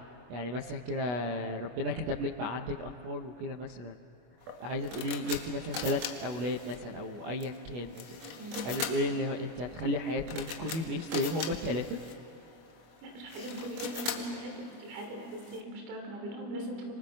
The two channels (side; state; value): left; late; 25 ms